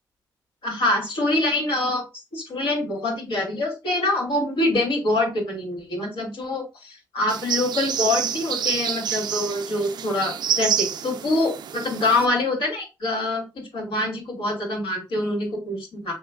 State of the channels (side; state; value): both; normal; correlation 0.44